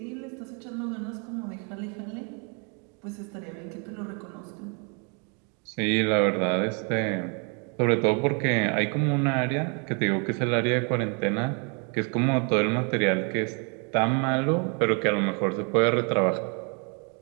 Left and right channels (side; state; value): left; quieter; 36.6 dB